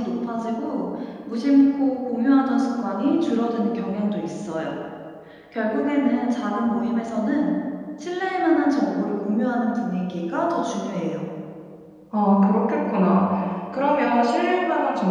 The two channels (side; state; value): both; identical; correlation 1.00